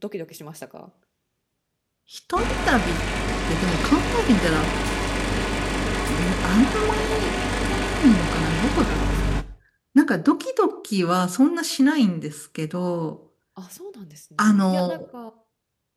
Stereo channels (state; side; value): identical; both; correlation 1.00